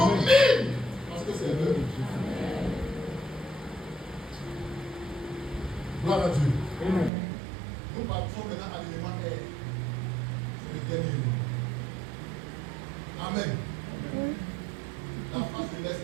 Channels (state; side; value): drops out; left; at 7.1 s